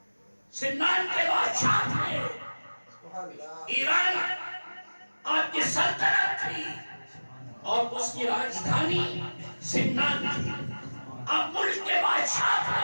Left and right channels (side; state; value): both; inverted; correlation -1.00